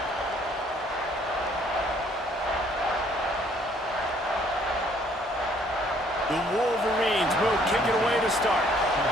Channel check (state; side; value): normal; both; correlation 0.62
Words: The Wolverines will kick it away to start.